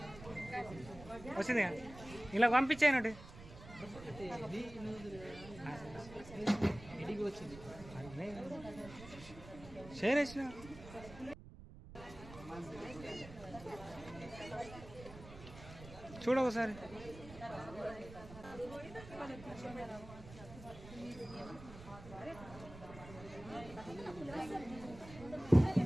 వచ్చింది ఇలా పంపించానండి షేర్ చేసిన చూడ ఒకసారి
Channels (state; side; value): noise; right; rumble, 16 dB below the sound